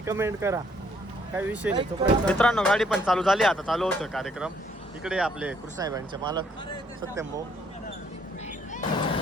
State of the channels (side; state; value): both; normal; correlation 0.67